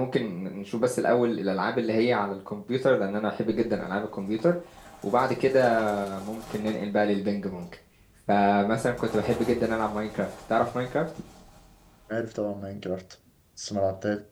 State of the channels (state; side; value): identical; both; correlation 1.00